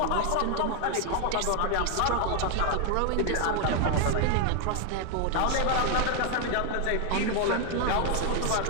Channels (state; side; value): different; both; correlation 0.00